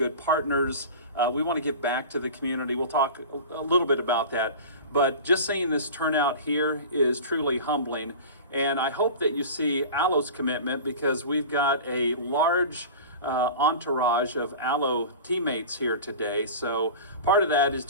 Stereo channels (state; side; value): inverted; both; correlation -0.34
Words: partners. We want to give back to the community. We'll talk a little bit about that. But just seeing this turnout here is truly humbling. And I hope that you see Allo's commitment, because we've got a large entourage of Allo teammates here today. So part of that is